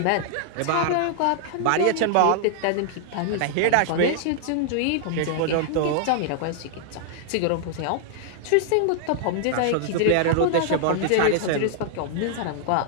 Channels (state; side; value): different; both; correlation -0.01